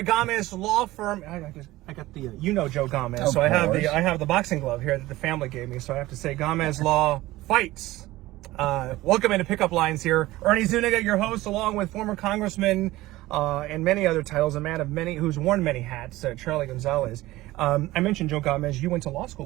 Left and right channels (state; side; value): quieter; left; 17.7 dB